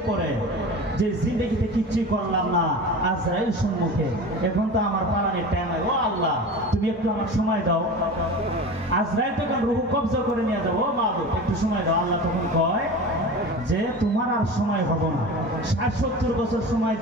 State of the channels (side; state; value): both; normal; correlation 0.33